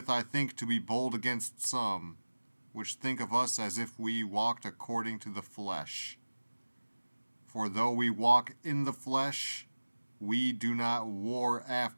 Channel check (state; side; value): inverted; both; correlation -1.00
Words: I think to be bold against some, which think of us as if we walked according to the flesh. For though we walk in the flesh, we do not war